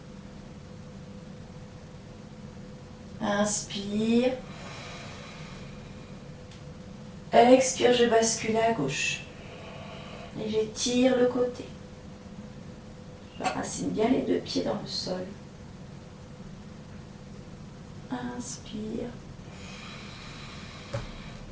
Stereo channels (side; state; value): both; identical; correlation 1.00